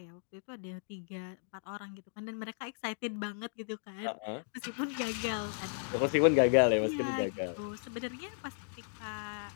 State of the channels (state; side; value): silent; right; digital silence